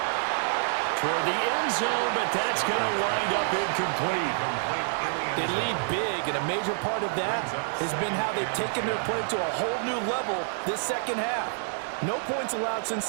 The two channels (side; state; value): left; silent; 60 dB below the other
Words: Toward the end zone, but that's going to wind up incomplete. They lead big, and a major part of that has been how they've taken their play to a whole new level this second half. No points allowed since